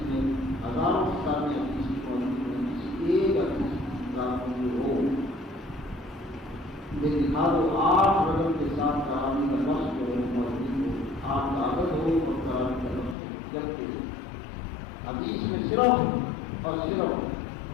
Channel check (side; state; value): right; drops out; at 13.2 s